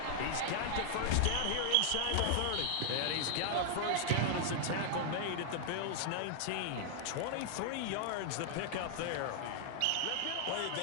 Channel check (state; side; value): different; both; correlation 0.00